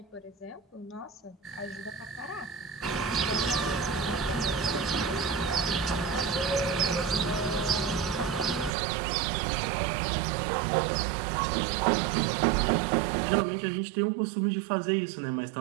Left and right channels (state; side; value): drops out; left; at 8.8 s